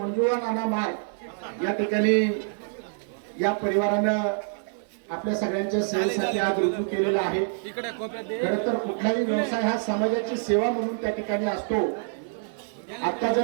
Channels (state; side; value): silent; left; 61 dB below the other